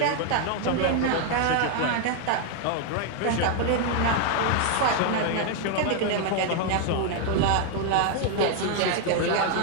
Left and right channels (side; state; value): both; different; correlation 0.00